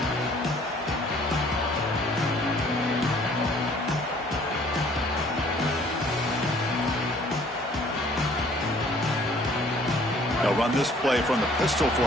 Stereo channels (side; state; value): both; normal; correlation 0.57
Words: They'll run this play from the pistol